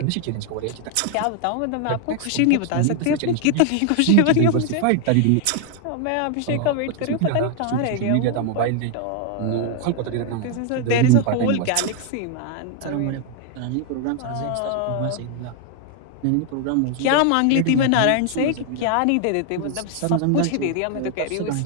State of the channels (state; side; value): different; both; correlation 0.00